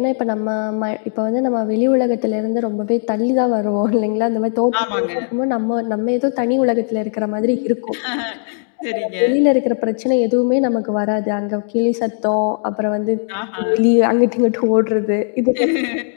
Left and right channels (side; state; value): right; silent; digital silence